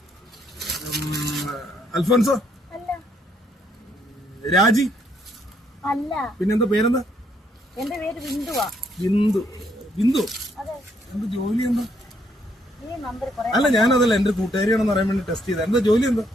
Alphonso? രാജി? അല്ല. പിന്നെന്താ പേരെന്താ? എന്റെ പേര് ബിന്ദുവാ. ബിന്ദു? ബിന്ദു എന്ത് ജോലി എന്താ? അല്ല, ഞാനതല്ല, എന്റെ കൂട്ടുകാരിയാണെന്ന് പറയാൻ വേണ്ടി ടെസ്റ്റ് ചെയ്ത. എന്താ ജോലി എന്താ?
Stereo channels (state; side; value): normal; both; correlation 0.71